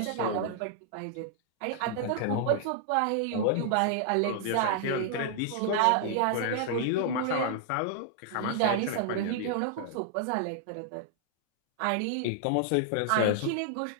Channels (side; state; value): both; different; correlation -0.01